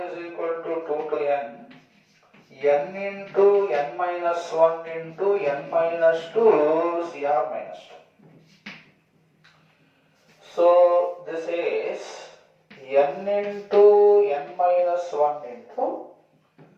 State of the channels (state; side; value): identical; both; correlation 1.00